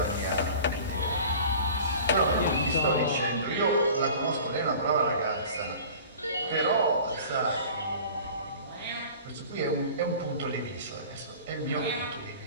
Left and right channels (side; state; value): both; inverted; correlation -0.42